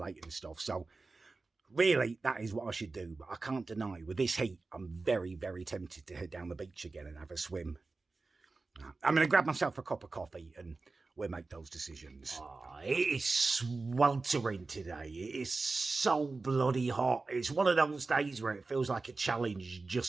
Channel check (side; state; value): left; quieter; 3.8 dB